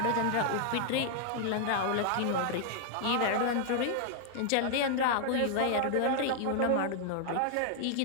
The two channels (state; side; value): different; both; correlation 0.00